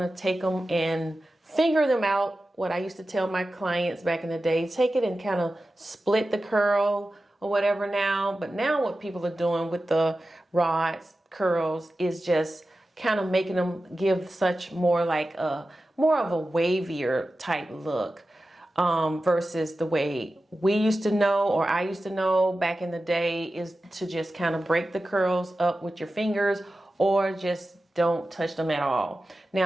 of take them and finger them out. What I used to tell my clients back in the day, take it and kind of split the curl or whatever now. But now what people are doing with the rods, curls, is just kind of making them give such more of a wavier type look, versus the way we used to know, or I used to know back in the day, is to just kind of break the curls up with your fingers, or just don't touch them at all.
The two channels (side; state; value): both; normal; correlation 0.94